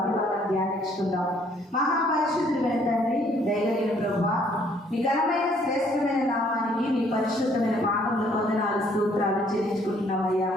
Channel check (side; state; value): both; normal; correlation 0.63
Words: ధ్యానించుకుందాం. మహాపరిశుద్ధుడైన తండ్రి, దయగలిగిన ప్రభువా, మీ ఘనమైన శ్రేష్టమైన నామానికి మీ పరిశుద్ధమైన పాదముల వందనాలు స్తోత్రాలు చెల్లించుకుంటున్నామయ్యా.